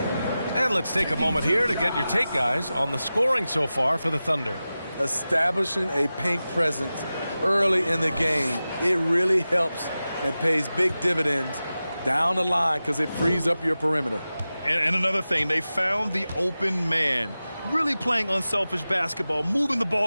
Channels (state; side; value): inverted; both; correlation -0.95